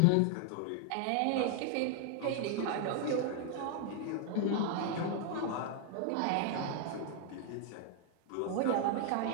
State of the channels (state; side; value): different; both; correlation 0.00